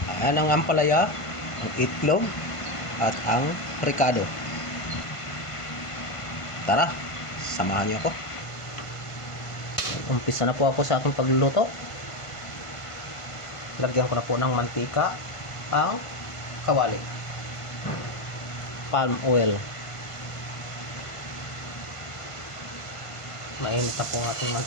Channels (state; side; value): late; right; 1.5 ms